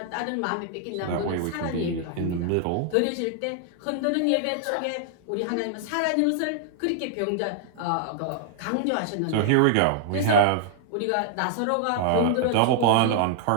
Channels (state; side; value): different; both; correlation -0.01